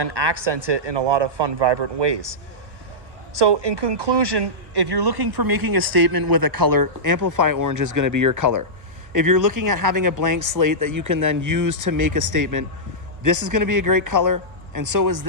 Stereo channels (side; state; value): left; late; 1.2 ms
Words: accent it in a lot of fun, vibrant ways. So in conclusion, if you're looking for making a statement with a color, Amplify Orange is going to be your color. If you're looking at having a blank slate that you can then use to make a statement, this is going to be a great color, and so is